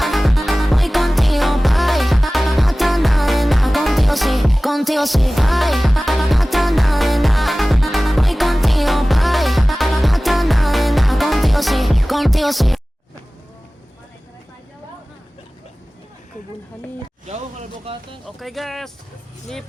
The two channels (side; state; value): both; normal; correlation 0.98